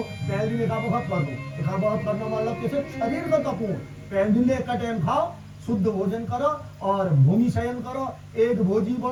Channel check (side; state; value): both; identical; correlation 1.00